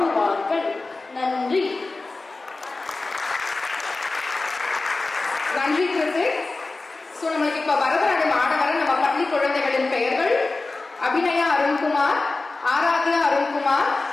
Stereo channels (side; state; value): right; quieter; 3.4 dB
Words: நன்றி. நன்றி கிருத்திக். நம்மளுக்கு இப்ப பரதநாட்டியம் ஆட வர நம்ம பள்ளி குழந்தைகளின் பெயர்கள்: அபிநயா அருண்குமார், ஆராத்யா அருண்குமார்,